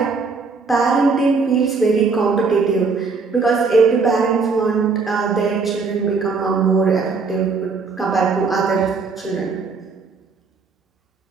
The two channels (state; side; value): quieter; left; 4.6 dB